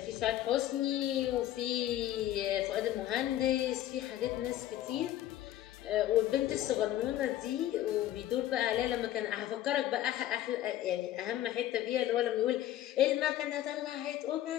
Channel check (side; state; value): right; quieter; 13.1 dB